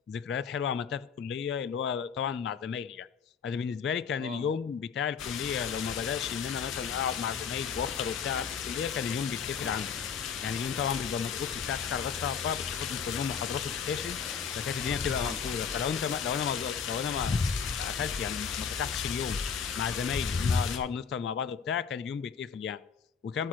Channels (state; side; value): quieter; right; 6.7 dB